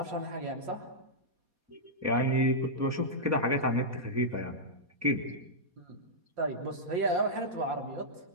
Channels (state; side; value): late; left; 4.2 ms